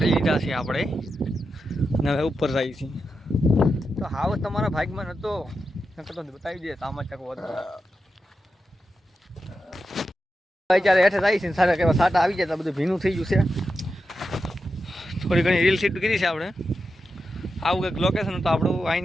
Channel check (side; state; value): both; normal; correlation 0.89